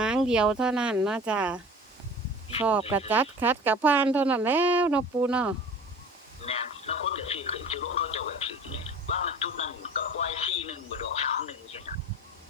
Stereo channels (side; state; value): both; normal; correlation 0.41